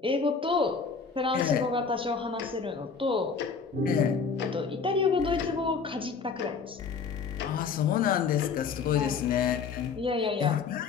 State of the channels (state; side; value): quieter; right; 5.5 dB